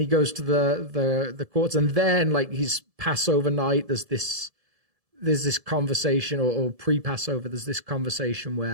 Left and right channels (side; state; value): left; late; 1.7 ms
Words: goes to the courts, and then like his Passover night, there's this there's this conversation, or pre-Passover, there's this conversation